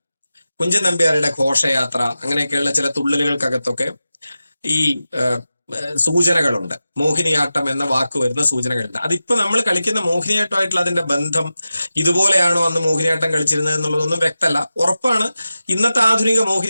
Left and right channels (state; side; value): inverted; both; correlation -0.93